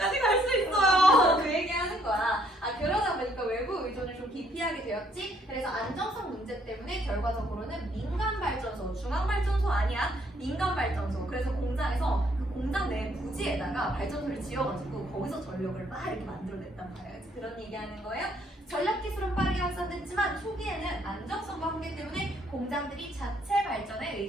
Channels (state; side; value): normal; both; correlation 0.67